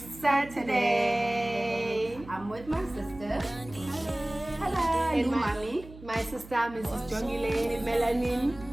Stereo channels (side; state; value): right; noise; hum, 18 dB below the sound